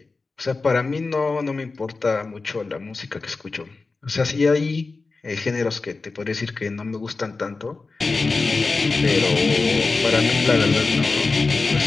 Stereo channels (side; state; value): right; quieter; 3.9 dB